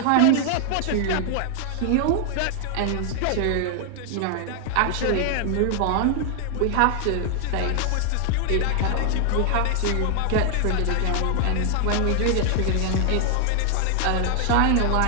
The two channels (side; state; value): both; different; correlation 0.00